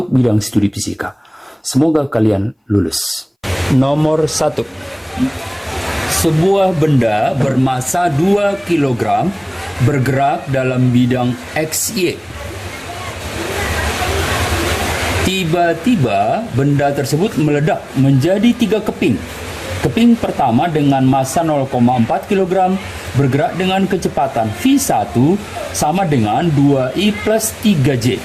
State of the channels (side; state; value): both; identical; correlation 1.00